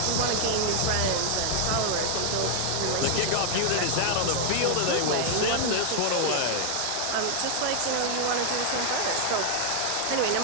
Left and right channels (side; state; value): both; different; correlation 0.00